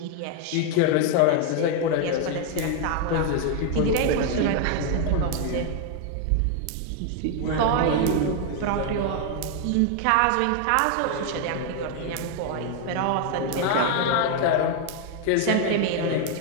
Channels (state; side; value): different; both; correlation 0.00